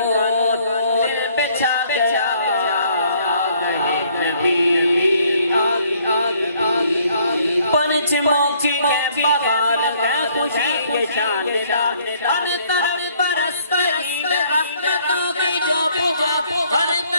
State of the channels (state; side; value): inverted; both; correlation -0.63